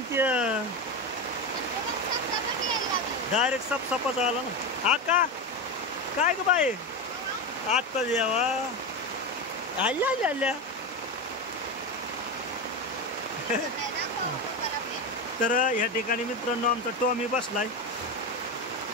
ते डायरेक्ट सपसापाच आला ना। आका काय ग बाई आता जेवा आल्या तर या ठिकाणी मित्रांनो आमचा टॉमी बसलाय।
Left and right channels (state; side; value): normal; both; correlation 0.17